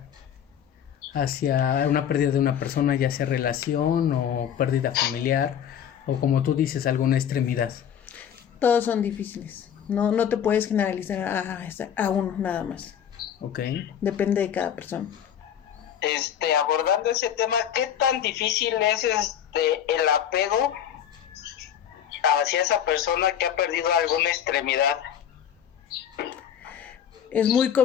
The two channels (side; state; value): right; quieter; 9.2 dB